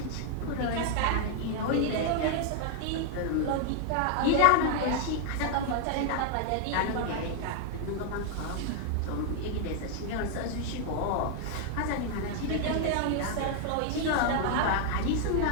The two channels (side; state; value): both; different; correlation 0.00